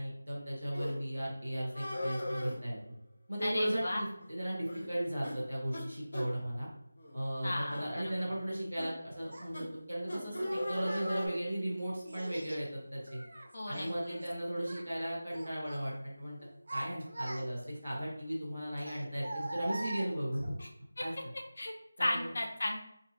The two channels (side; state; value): both; inverted; correlation -0.97